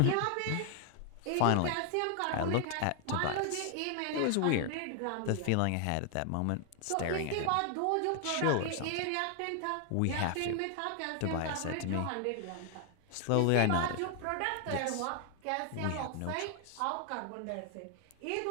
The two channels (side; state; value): both; different; correlation 0.00